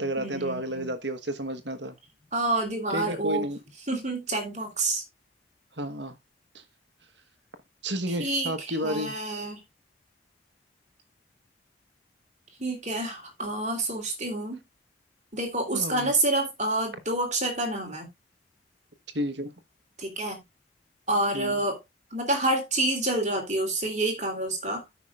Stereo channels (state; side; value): normal; both; correlation -0.02